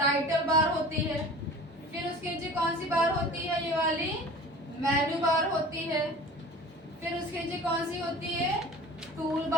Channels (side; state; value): both; normal; correlation 0.41